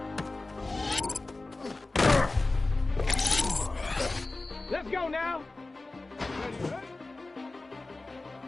Let's go now. Ready?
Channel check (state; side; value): quieter; right; 3.2 dB